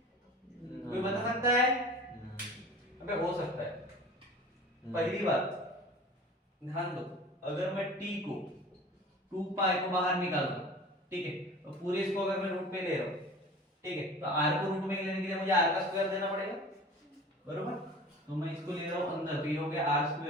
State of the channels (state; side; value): normal; both; correlation 0.41